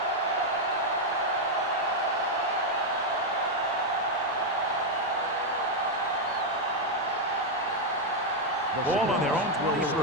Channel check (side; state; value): both; normal; correlation 0.00